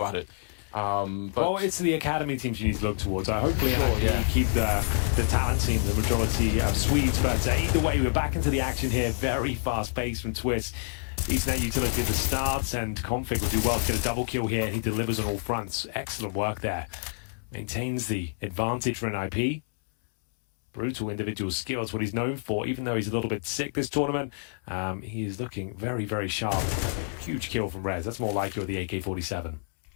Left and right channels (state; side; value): silent; right; 59 dB below the other